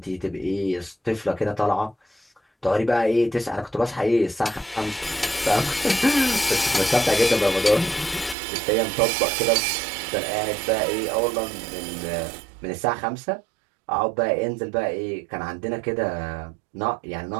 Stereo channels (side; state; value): left; drops out; at 8.3 s